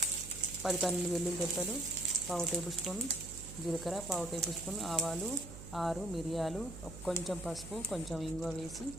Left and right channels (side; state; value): right; noise; hum, 13 dB below the sound